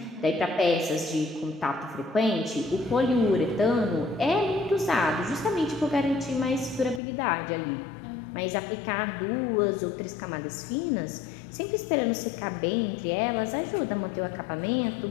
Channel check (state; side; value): drops out; right; at 7.0 s